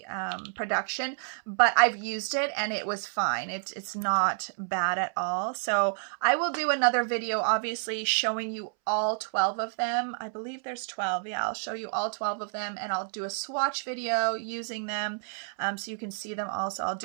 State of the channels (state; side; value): silent; left; 58 dB below the other